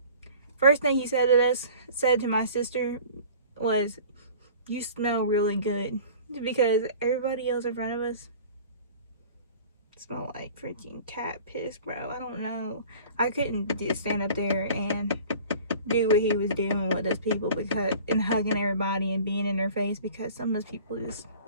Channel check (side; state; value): both; inverted; correlation -0.45